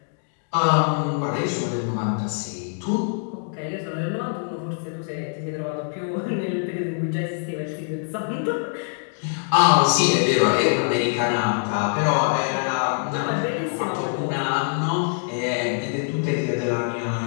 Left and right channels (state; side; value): silent; right; 63 dB below the other